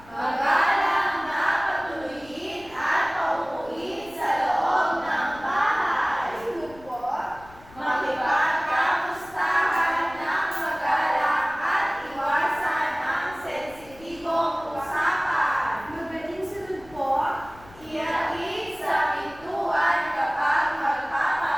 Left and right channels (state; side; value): noise; left; rumble, 23 dB below the sound